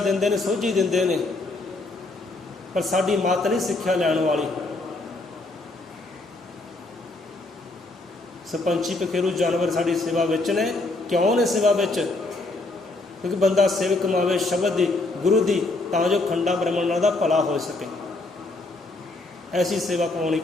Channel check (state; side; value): quieter; right; 3.0 dB